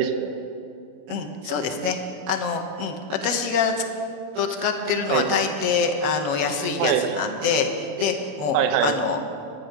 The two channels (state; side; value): late; left; 27 ms